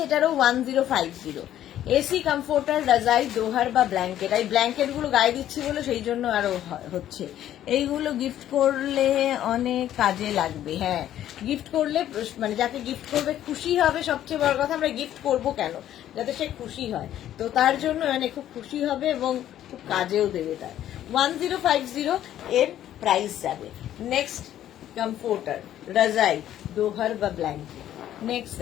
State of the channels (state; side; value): quieter; right; 11.8 dB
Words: এটারও 1050। এসি কমফোর্টার, রাজাই, দোহার বা ব্ল্যাঙ্কেট। এই ব্ল্যাঙ্কেট গুলো গায়ে দিচ্ছি বলে সেই জন্য আরো হচ্ছে। এইগুলো গিফট করলে অনেক কাজে লাগবে। হ্যাঁ, গিফট করলে মানে যাকে গিফট করবে খুশি হবে, সবচেয়ে বড় কথা। আমরা গিফট করব কেন? যাতে সে খুশি হয়, তো তার জন্য মানে খুব খুশি হবে এবং খুব কাজেও দেবে তার। 1050 এর প্রাইস যাবে। নেক্সট কমফোর্টার, রাজাই, দোহার বা ব্ল্যাঙ্কেট। নেক্সট